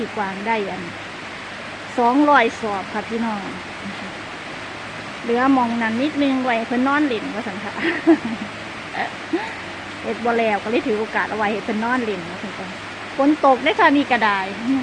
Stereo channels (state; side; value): identical; both; correlation 1.00